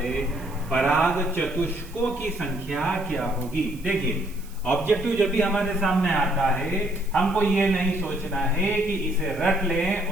पराग चतुष्कों की संख्या क्या होगी। देखिए, ऑब्जेक्टिव जब भी हमारे सामने आता है, हमको ये नहीं सोचना है कि इसे रट लें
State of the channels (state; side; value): noise; right; hiss, 23 dB below the sound